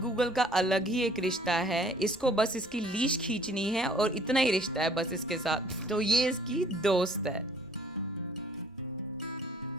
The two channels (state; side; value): normal; both; correlation 0.57